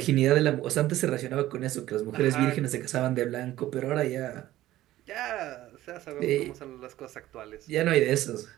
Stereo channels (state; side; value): quieter; left; 15.0 dB